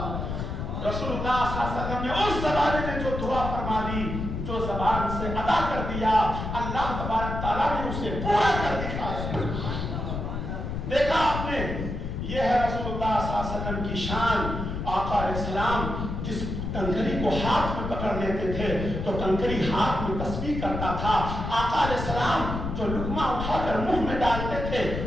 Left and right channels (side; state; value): left; noise; rumble, 4 dB below the sound